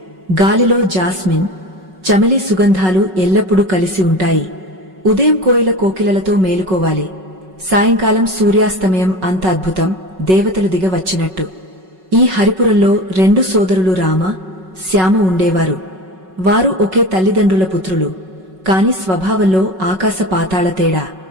గాలిలో జాస్మిన్, చమెలి సుగంధాలు ఎల్లప్పుడూ కలిసి ఉంటాయి. ఉదయం కోయిల కోకిలలతో మేలుకోవాలి, సాయంకాలం సూర్యాస్తమయం అంత అద్భుతం, దేవతలు దిగ వచ్చినట్టు. ఈ హరిపురంలో రెండు సోదరులు రామ, శ్యామ ఉండేవారు. వారు ఒకే తల్లిదండ్రుల పుత్రులు, కాని స్వభావంలో ఆకాశ పాతాళ తేడా.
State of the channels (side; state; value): left; late; 5.4 ms